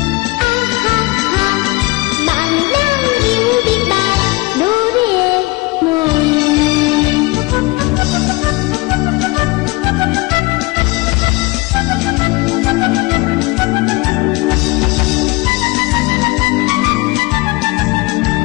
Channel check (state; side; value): quieter; right; 23.6 dB